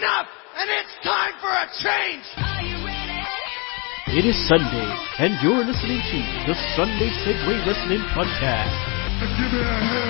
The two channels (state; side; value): quieter; right; 31.2 dB